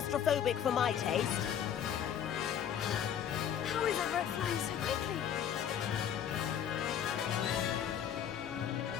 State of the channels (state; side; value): quieter; right; 9.2 dB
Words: for my taste. How is Everett flying so quickly?